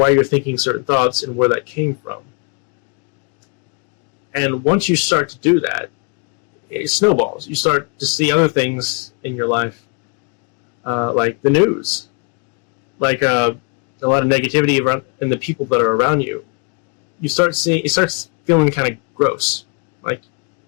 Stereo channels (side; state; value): right; quieter; 35.7 dB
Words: you're thinking certain thoughts and where that came from. And once you start to do that, it snowballs. You start to see other things in your life, like the news, like a lot of negativity around, and the people that are around you. It starts feeling kind of gross. Like